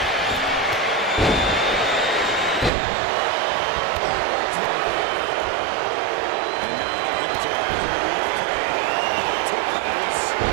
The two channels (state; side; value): drops out; left; at 2.7 s